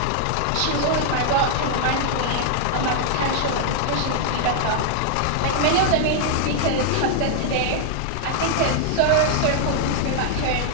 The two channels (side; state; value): both; different; correlation 0.00